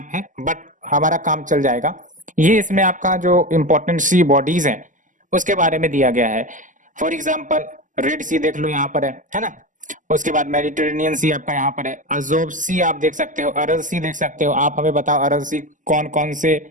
है बट हमारा काम चल जाएगा। ये इसमें आपका जो इंपॉर्टेंट सी बॉडीज हैं उसके बारे में दिया गया है। फॉर एग्जाम्पल रेड सी देख लो यहाँ पर है ना। उसके बाद मेडिटेरेनियन सी आपका यहाँ पर है, अजोब सी आप देख सकते हो, अरल सी देख सकते हो। आप हमें बताओ अरल सी कौन कौन से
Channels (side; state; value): left; late; 0.37 ms